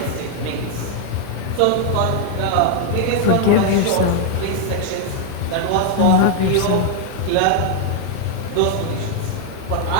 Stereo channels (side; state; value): both; different; correlation 0.00